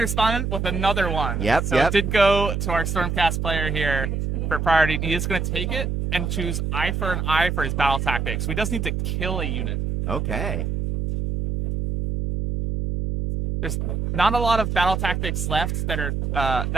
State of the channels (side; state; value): right; noise; hum, 1 dB below the sound